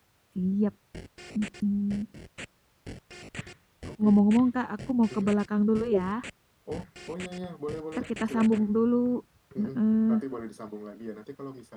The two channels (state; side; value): identical; both; correlation 1.00